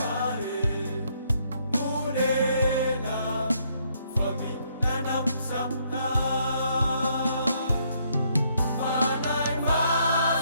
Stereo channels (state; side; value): inverted; both; correlation -0.71